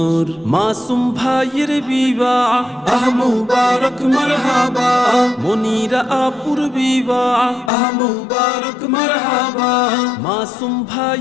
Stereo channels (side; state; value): right; drops out; at 7.7 s